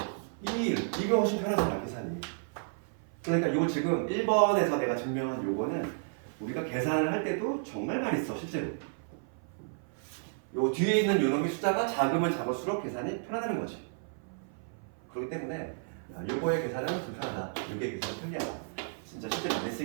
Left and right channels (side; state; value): left; silent; 56 dB below the other